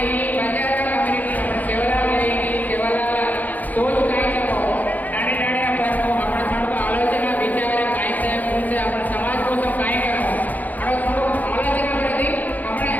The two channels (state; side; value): late; right; 0.081 ms